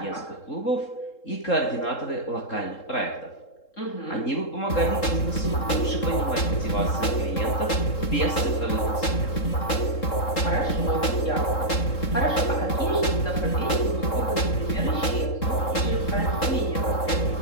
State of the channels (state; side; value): late; right; 3.7 ms